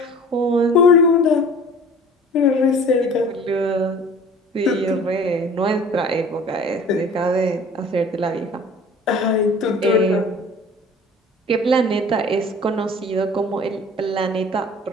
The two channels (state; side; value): normal; both; correlation 0.46